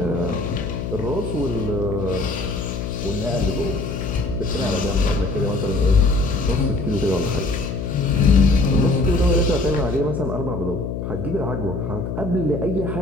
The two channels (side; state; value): left; noise; hum, 5 dB below the sound